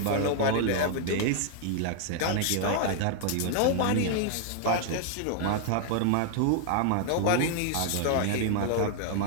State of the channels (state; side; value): different; both; correlation 0.00